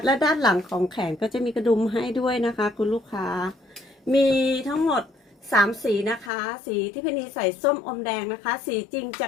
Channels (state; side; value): drops out; right; at 6.3 s